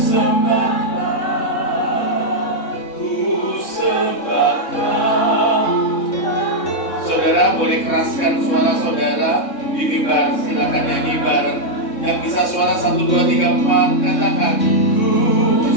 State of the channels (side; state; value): right; late; 3.6 ms